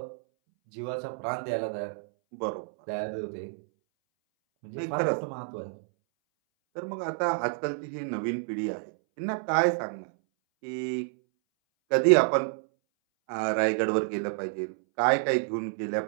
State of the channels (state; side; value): silent; left; 59 dB below the other